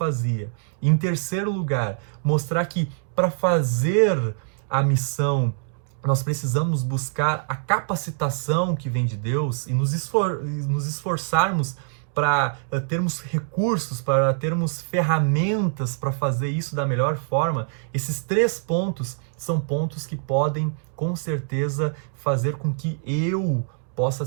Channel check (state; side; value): silent; left; digital silence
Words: E em terceiro lugar, mostrar que para fazer a missão, nós precisamos buscar a capacitação que vem de Deus e nos esforçarmos para termos recursos, para termos ferramentas para fazer isso da melhor forma. Esses 3 pontos são pontos que podem, com certeza, fazer com que eu possa